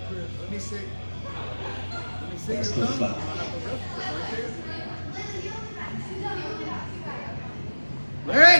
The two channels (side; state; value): both; inverted; correlation -1.00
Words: me see. Let me see That's your the thumb. foul.